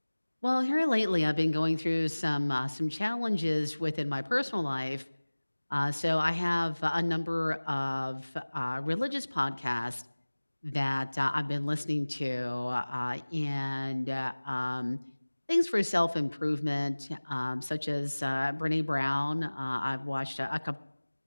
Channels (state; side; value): inverted; both; correlation -1.00